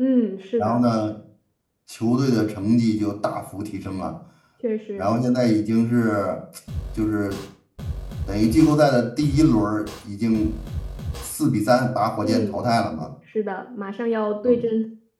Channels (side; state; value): both; identical; correlation 1.00